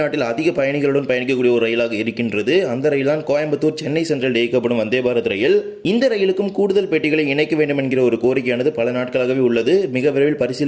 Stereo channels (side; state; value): both; identical; correlation 1.00